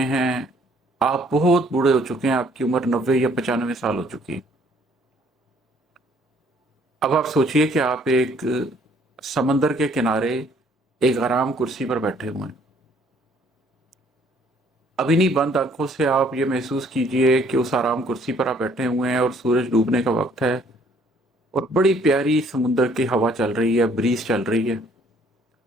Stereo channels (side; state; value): both; normal; correlation 0.62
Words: आप बहुत बूढ़े हो चुके हैं, आपकी उम्र 90 या 95 साल हो चुकी है। अब आप सोचिए कि आप एक समंदर के किनारे एक आराम कुर्सी पर बैठे हुए हैं। अभी नहीं, बंद आंखों से आप ये महसूस कीजिए कि उस आराम कुर्सी पर आप बैठे हुए हैं और सूरज डूबने का वक्त है और बड़ी प्यारी समुंदर की हवा चल रही है, ब्रीज चल रही है।